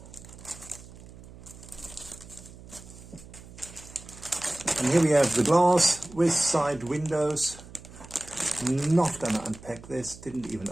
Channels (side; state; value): right; noise; hum, 18 dB below the sound